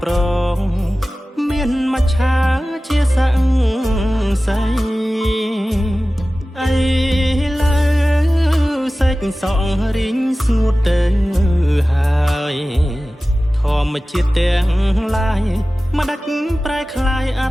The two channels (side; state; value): both; normal; correlation 0.96